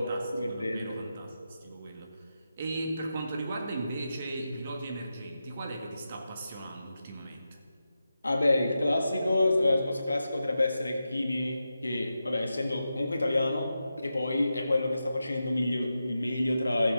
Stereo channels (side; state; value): both; inverted; correlation -0.90